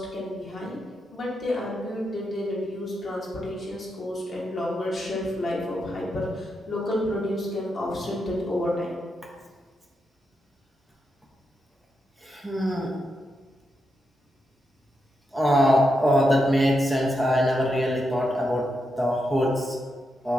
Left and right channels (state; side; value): normal; both; correlation 0.84